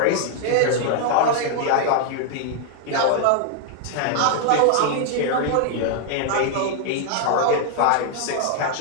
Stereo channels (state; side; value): different; both; correlation -0.01